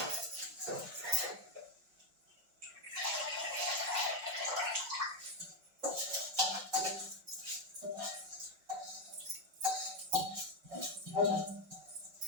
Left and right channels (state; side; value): late; left; 5.4 ms